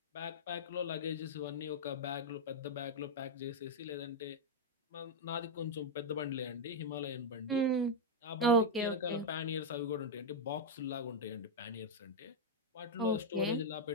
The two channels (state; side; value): normal; both; correlation 0.00